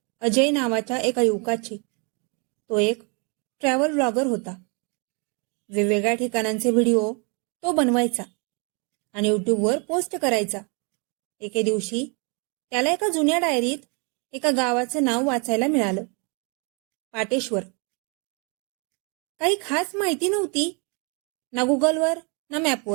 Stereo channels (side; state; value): left; quieter; 34.2 dB